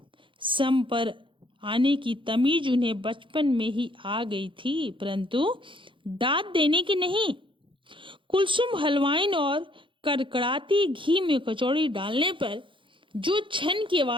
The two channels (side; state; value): left; late; 0.24 ms